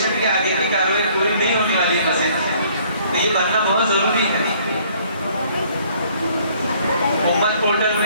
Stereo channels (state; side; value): inverted; both; correlation -0.60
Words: کی آگے کی کارروائی پوری نہیں ہونے والی ہے مسجد. تو یہ بننا بہت ضروری ہے. امت پورٹل